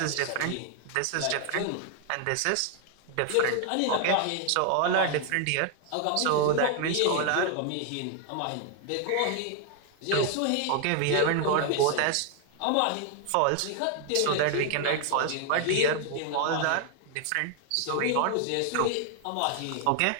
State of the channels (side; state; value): both; different; correlation 0.00